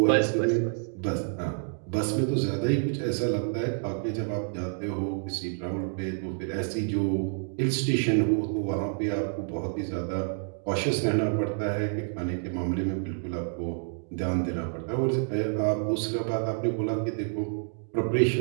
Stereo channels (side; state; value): left; silent; 59 dB below the other